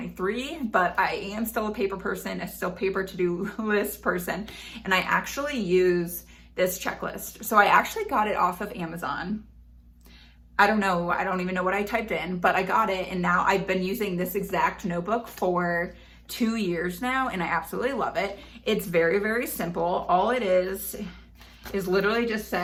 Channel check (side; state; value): both; identical; correlation 1.00